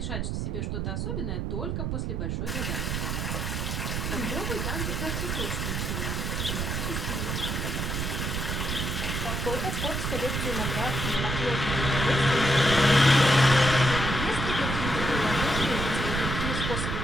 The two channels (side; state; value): right; noise; rumble, 1 dB below the sound